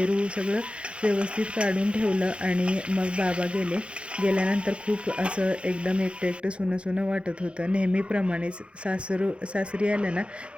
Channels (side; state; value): left; late; 0.058 ms